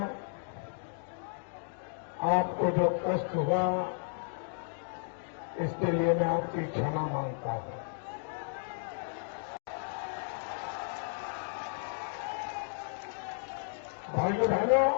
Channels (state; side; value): silent; right; digital silence